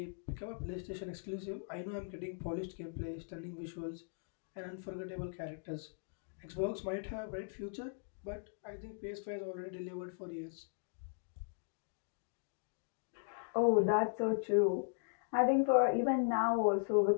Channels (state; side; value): silent; right; digital silence